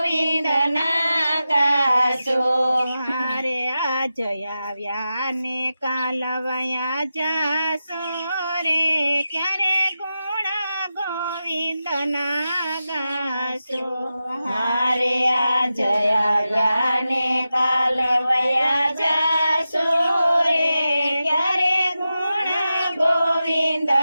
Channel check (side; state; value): both; inverted; correlation -0.92